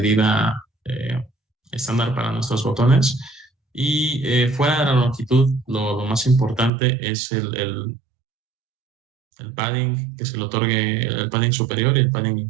estándar para nuestros botones. Y fuera de la longitud, lo más importante es el padding que se le otorgue, el padding superior y el padding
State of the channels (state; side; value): drops out; left; at 6.7 s